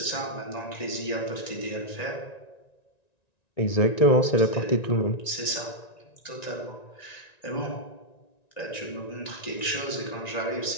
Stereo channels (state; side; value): late; right; 1.9 ms